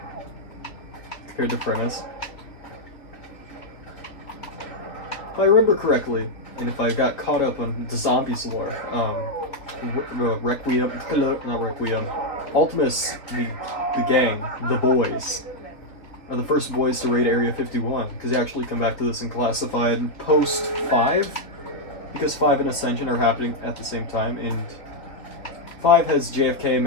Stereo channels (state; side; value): late; right; 3.5 ms